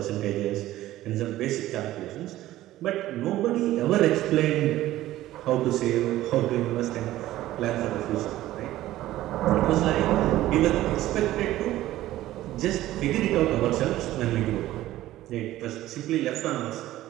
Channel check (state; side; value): quieter; left; 15.0 dB